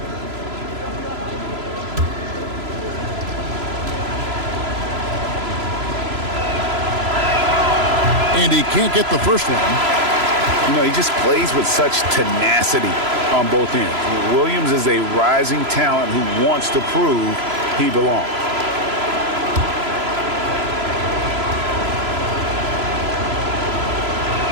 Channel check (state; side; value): late; left; 3.0 ms